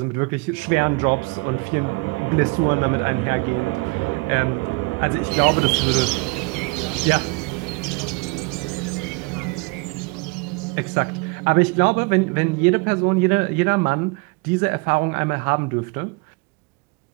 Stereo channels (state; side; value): quieter; left; 28.2 dB